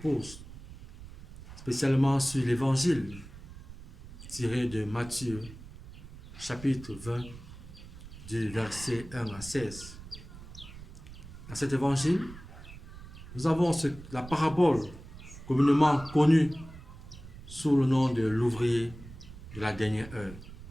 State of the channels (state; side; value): noise; right; rumble, 15 dB below the sound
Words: spécialement sur l'Évangile tiré de Matthieu, chapitre 20, du verset 1 à 16. Dans cet Évangile, nous avons la parabole communément connue sous le nom de l'ouvrier de la dernière heure.